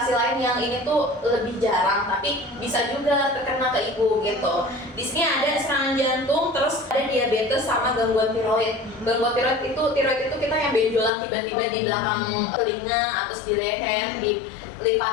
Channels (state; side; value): drops out; right; at 11.1 s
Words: lain yang ini tuh lebih jarang, tapi bisa juga terkena ke ibu gitu. Di sini ada serangan jantung, terus ada diabetes sama gangguan tiroid. Gangguan tiroid itu kita yang benjolan tiba-tiba di belakang telinga, atau di leher, di